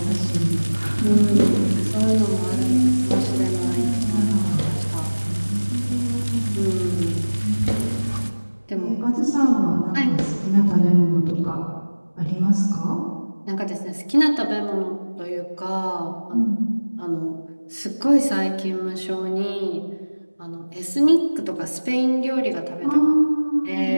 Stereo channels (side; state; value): both; inverted; correlation -1.00